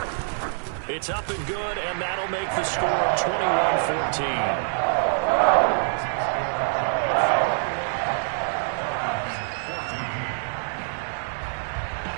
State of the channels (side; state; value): left; silent; digital silence